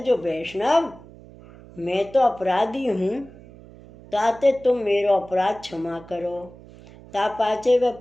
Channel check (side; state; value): right; noise; hum, 20 dB below the sound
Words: वैष्णव मैं तो अपराधी हूँ, ताते तुम मेरो अपराध क्षमा करो। ता पाचे वे